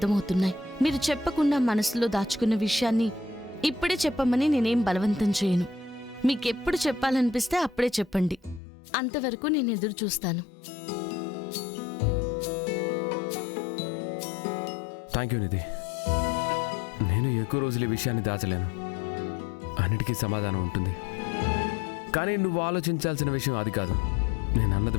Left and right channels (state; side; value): drops out; right; at 8.6 s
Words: మీరు చెప్పకుండా మనసులో దాచుకున్న విషయాన్ని ఇప్పుడే చెప్పమని నేనేం బలవంతం చేయను. మీకెప్పుడు చెప్పాలనిపిస్తే అప్పుడే చెప్పండి. అంతవరకు నేను ఎదురు చూస్తాను. థ్యాంక్ యూ నిధి. నేను ఎక్కువ రోజులు ఈ విషయాన్ని దాచలేను. అన్నిటికీ సమాధానం ఉంటుంది. కానీ నువ్వు ఆలోచించాల్సిన విషయం అది కాదు. నేను అన్నది